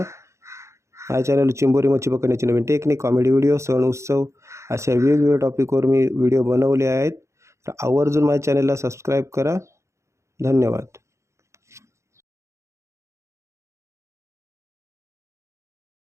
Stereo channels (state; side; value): late; left; 0.14 ms